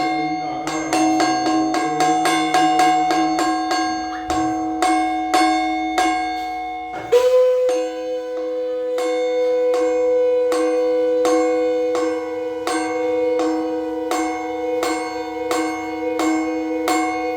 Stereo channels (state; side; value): identical; both; correlation 1.00